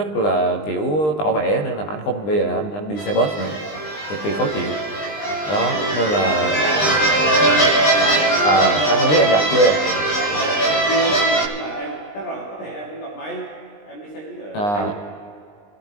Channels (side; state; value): right; late; 20 ms